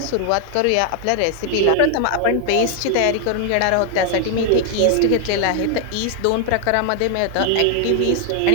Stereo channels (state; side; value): different; both; correlation 0.00